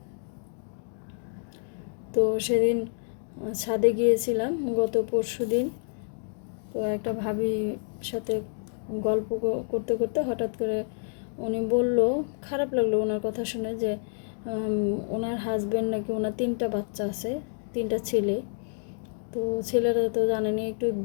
তো সেদিন ছাদে গিয়েছিলাম গত পরশুদিন। তো একটা ভাবির সাথে গল্প করতে করতে হঠাৎ করে উনি বলল, খারাপ লাগলো ওনার কথা শুনে, যে ওনার হাজব্যান্ড নাকি, ওনার 3টা বাচ্চা আছে, 3টা ছেলে। তো ছেলেরা তো জানেনি একটু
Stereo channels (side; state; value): right; silent; digital silence